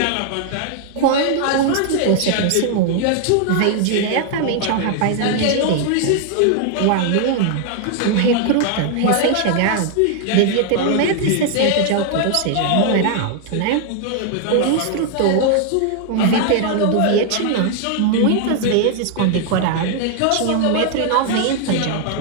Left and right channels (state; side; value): different; both; correlation 0.00